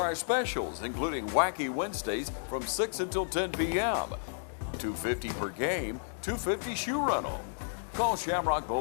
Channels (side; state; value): right; silent; digital silence